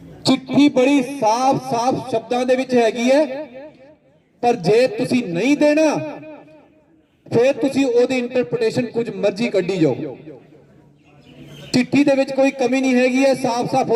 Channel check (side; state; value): both; identical; correlation 1.00